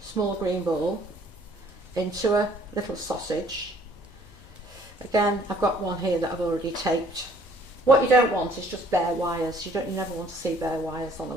small green ball into a little sausage. Again, I've got one here that I've already taped. What you don't want is just bare wires. You never want to see bare wires on a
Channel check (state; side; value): normal; both; correlation 0.58